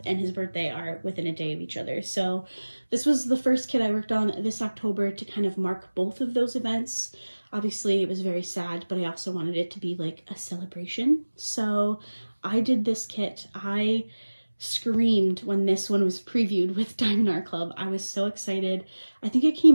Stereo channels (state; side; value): inverted; both; correlation -1.00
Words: and his birthday are within a day of each other. So this was the first kit I worked on this October to kind of mark both of those events. Obviously, it was very sad, but I also wanted it to be like a celebration. So I did this kit. I screamed when this one was previewed with Diamond Art Club. I was so excited. I think it came